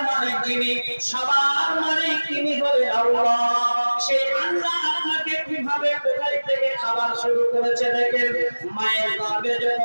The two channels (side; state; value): both; inverted; correlation -1.00